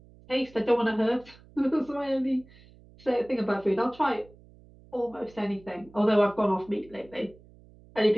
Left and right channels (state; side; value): noise; right; hum, 25 dB below the sound